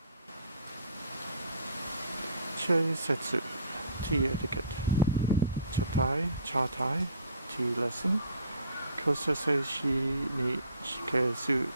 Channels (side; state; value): both; inverted; correlation -0.52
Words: Chei Setsu, tea etiquette. Chatai, tea lesson. Kosase shi ni shikesu.